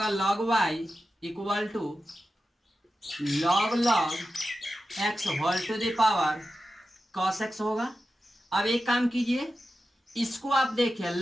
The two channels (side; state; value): both; normal; correlation 0.92